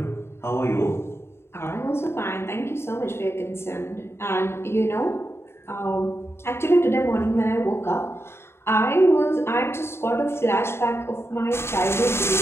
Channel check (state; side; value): late; right; 0.12 ms